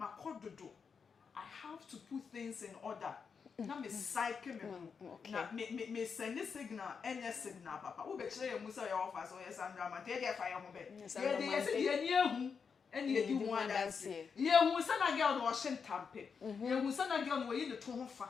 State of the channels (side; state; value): right; quieter; 5.9 dB